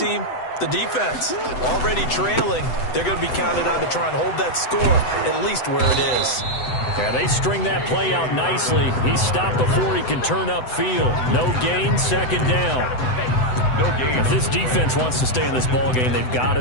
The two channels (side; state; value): right; late; 7.9 ms